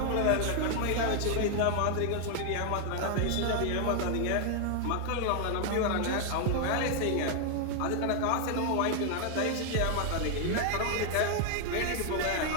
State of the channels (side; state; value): both; different; correlation 0.00